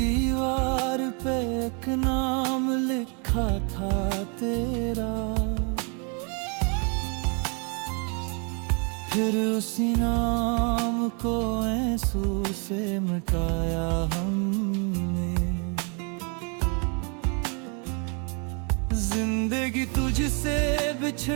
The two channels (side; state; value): left; quieter; 35.9 dB